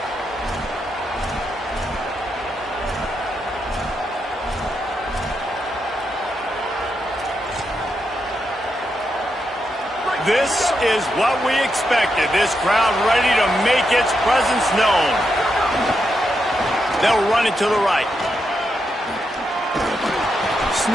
This is what we expected. This crowd ready to make its presence known. They'll run it to the right.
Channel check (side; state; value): both; normal; correlation 0.84